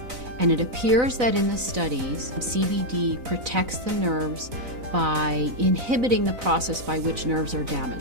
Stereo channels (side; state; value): left; late; 4.0 ms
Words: And it appears that in the studies, CBD protects the nerves by inhibiting the process by which nerves are